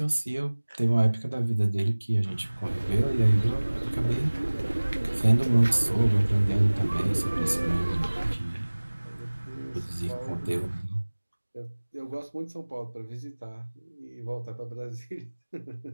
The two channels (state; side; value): inverted; both; correlation -1.00